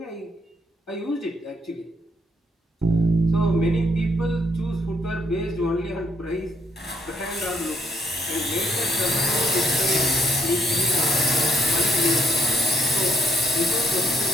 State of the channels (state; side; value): normal; both; correlation 0.70